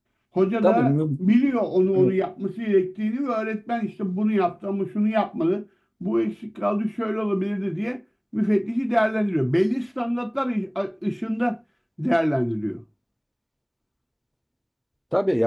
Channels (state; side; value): identical; both; correlation 1.00